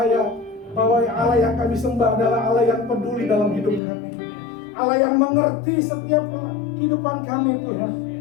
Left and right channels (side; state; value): right; drops out; at 3.8 s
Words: bahwa Allah yang kami sembah adalah Allah yang peduli dalam hidup kami, Allah yang mengerti setiap kehidupan kami Tuhan,